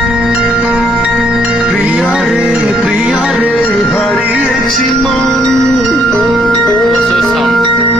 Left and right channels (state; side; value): normal; both; correlation 0.68